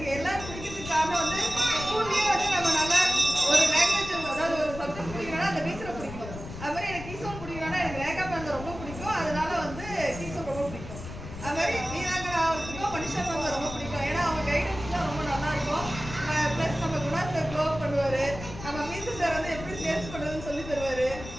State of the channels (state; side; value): noise; left; rumble, 11 dB below the sound